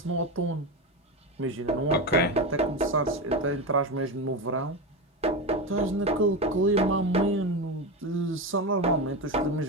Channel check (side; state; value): both; normal; correlation 0.17